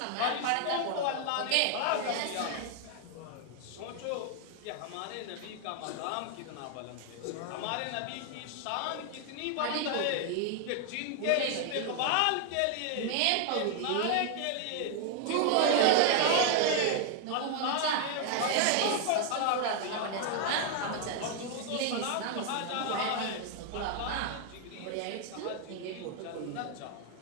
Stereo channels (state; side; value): different; both; correlation 0.00